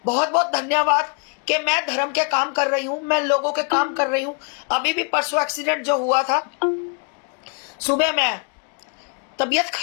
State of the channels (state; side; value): quieter; right; 37.5 dB